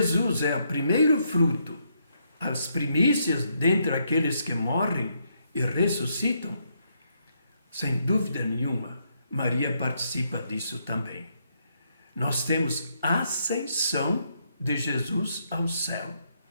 é o primeiro fruto, as primícias dentre aqueles que morrem e ressuscitam, Sem dúvida nenhuma, Maria participa disso também. Nós temos a ascensão de Jesus ao céu.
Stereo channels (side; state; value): both; inverted; correlation -0.76